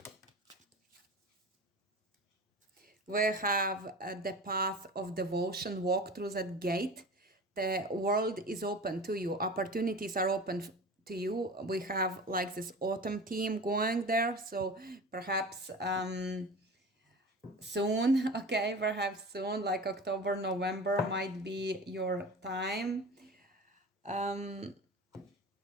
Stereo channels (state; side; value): normal; both; correlation 0.34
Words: We have the path of devotion. Walk through that gate. The world is open to you. Opportunities are open to you. We have like this autumn theme going there. So perhaps soon, okay, perhaps soon, like October, November might be your time.